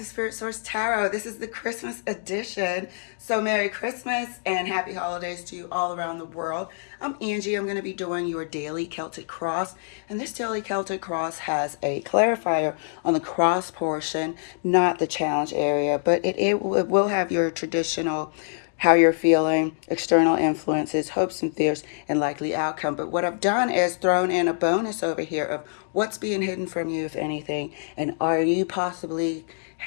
Spirit Source Tarot. This is the Christmas edition. So Merry Christmas and Happy Holidays to you all around the world. I'm Angie. I'm going to be doing your daily Celtic cross. And this daily Celtic cross has a clarifier on the cross portion, not the challenge area, but it will have your traditional how you're feeling, external influences, hopes and fears, and likely outcome. But what I've done is thrown in a bonus over here of what's being hidden from you, if anything, and are you possibly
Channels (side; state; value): right; silent; digital silence